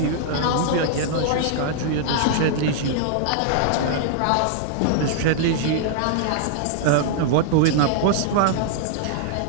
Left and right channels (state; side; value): different; both; correlation -0.01